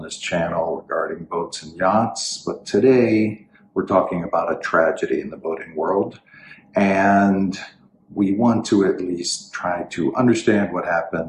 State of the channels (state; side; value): identical; both; correlation 1.00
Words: this channel regarding boats and yachts, but today we're talking about a tragedy in the boating world, and we want to at least try to understand what